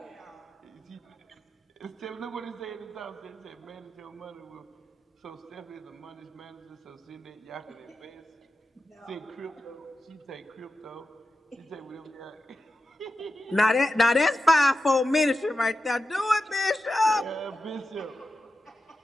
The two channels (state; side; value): normal; both; correlation 0.91